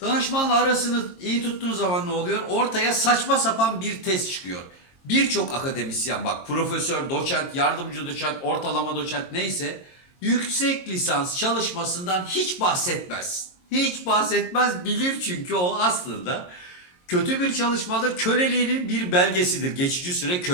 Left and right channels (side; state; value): right; late; 22 ms